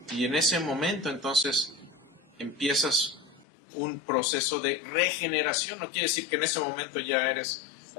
y en ese momento entonces empiezas un proceso de regeneración. No quiere decir que en ese momento ya eres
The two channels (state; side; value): drops out; right; at 3.5 s